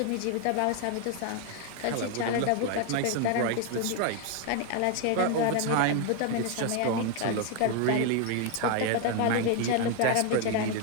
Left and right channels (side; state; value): both; different; correlation 0.01